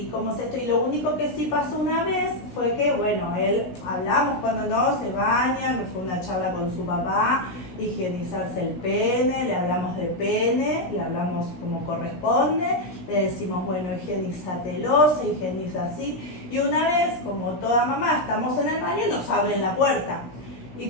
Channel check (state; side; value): late; right; 16 ms